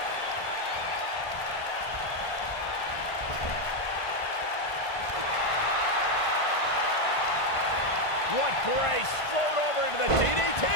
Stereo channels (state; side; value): late; right; 1.5 ms